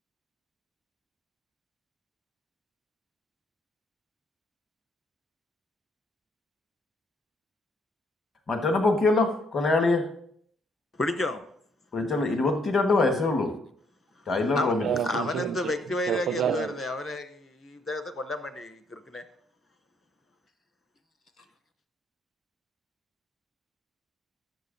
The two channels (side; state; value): both; normal; correlation 0.69